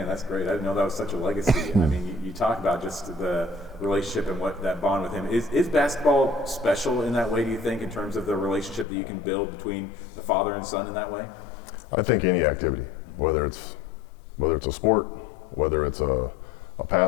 that's great. I didn't know that was such a legacy. I mean, you talk about just the relationship and what that bond with him. Is basketball special in that way, do you think, in terms of the relationship that you can build between the father and son in that way? I think any activity, whether it's a sport, whether it's a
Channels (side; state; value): right; drops out; at 8.8 s